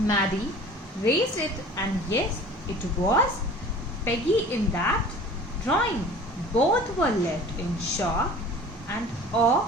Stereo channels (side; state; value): both; normal; correlation 0.44